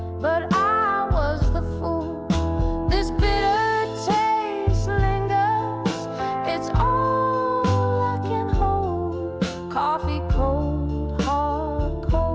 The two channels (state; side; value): identical; both; correlation 1.00